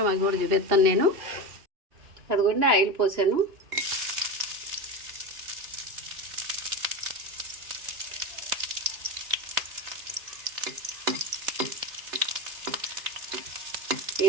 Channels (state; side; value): late; left; 2.9 ms